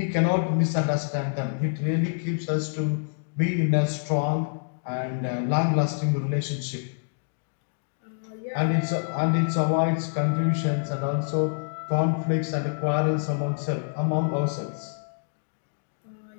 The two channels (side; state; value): right; silent; digital silence